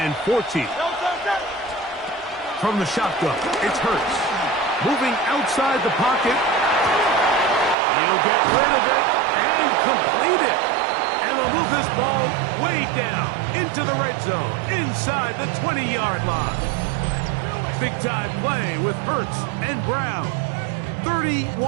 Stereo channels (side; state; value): left; drops out; at 7.8 s